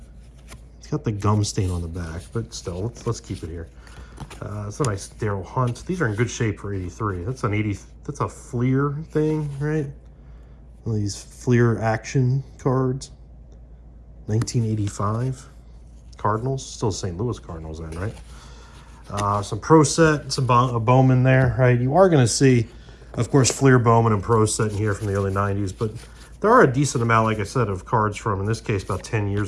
it's got the gum stain on the back, but still, let's keep it here. It's a nice Daryl Hunt. These are in good shape for 83. That's a Fleer thing, right? One of these Fleer action cards. 1985. Cardinals, still St. Louis Cardinals then, right? Some Pro Set, some Bowman there, right? You are going to see, of course, Fleer, Bowman, and Pro Set in here from the early 90s, but there are a decent amount, like I said, of cards from, in this case, about 10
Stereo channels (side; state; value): both; identical; correlation 1.00